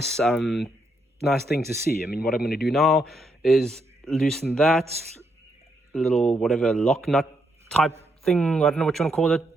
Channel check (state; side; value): normal; both; correlation 0.78